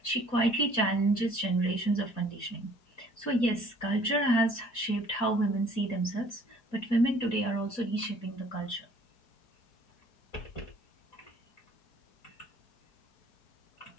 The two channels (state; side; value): late; right; 4.2 ms